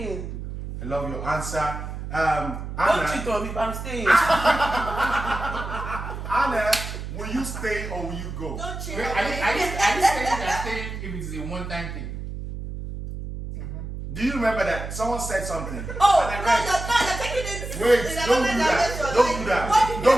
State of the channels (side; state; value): right; noise; hum, 7 dB below the sound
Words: I love your answer. Don't Anna, cheat on me, but I'm staying. Anna, will you stay or will you go? Don't cheat Wait, on are me. you saying that staying if it is a one-time thing? Do you remember that someone said something? Oh, And I no, read- you're taking it. Wait, in don't another do that. direction, Don't like, do that. what did Don't